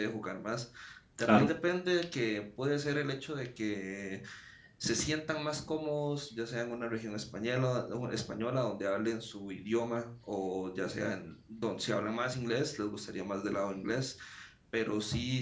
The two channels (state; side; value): identical; both; correlation 1.00